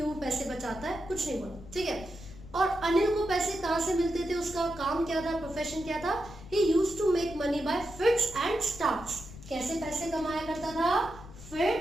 पैसे बचाता है, कुछ नहीं बोला। ठीक है, और अनिल को पैसे कहाँ से मिलते थे, उसका काम क्या था, प्रोफेशन क्या था, he used to make money by fits and starts. कैसे पैसे कमाया करता था,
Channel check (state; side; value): noise; left; rumble, 16 dB below the sound